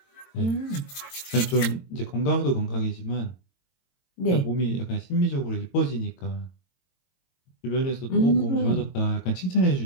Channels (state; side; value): late; right; 22 ms